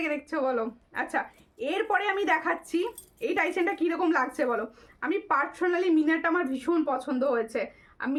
দেখছো বলো। আচ্ছা, এরপরে আমি দেখাচ্ছি এই টাইসেনটা কীরকম লাগছে বলো। আমি পার্সোনালি মিনারটা আমার ভীষণ পছন্দ হয়েছে, আর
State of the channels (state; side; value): identical; both; correlation 1.00